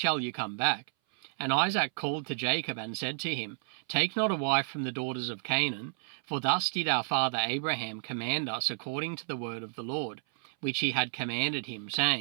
you come back. And Isaac called to Jacob and said to him, Take not a wife from the daughters of Canaan, for thus did our father Abraham command us according to the word of the Lord, which he had commanded him,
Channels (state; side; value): silent; left; 57 dB below the other